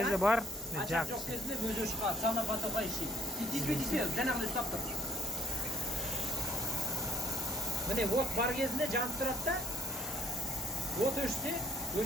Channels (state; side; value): normal; both; correlation 0.64